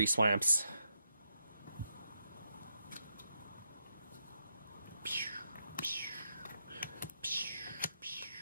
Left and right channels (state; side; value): inverted; both; correlation -0.81